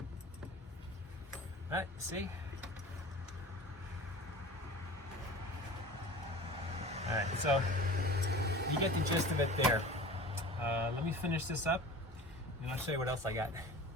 right, see? All right, so you get the gist of it there. Let me finish this up, and I'll show you what else I got.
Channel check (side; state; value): both; normal; correlation 0.38